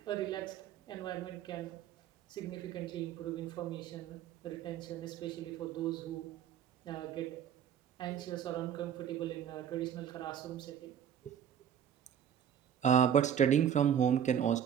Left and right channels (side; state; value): left; quieter; 9.1 dB